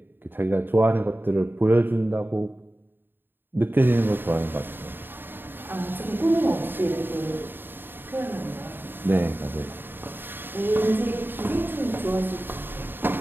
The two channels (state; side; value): late; left; 0.097 ms